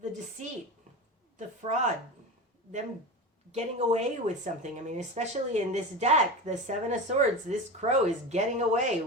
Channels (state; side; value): normal; both; correlation 0.25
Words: the deceit, the fraud, them getting away with something. I mean, especially in this deck, the Seven of Swords, this crow is getting away